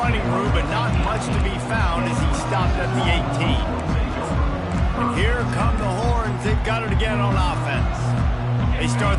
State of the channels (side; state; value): both; identical; correlation 1.00